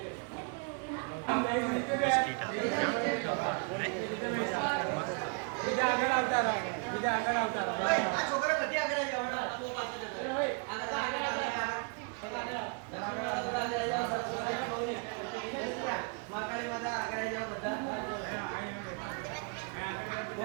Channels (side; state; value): left; quieter; 35.0 dB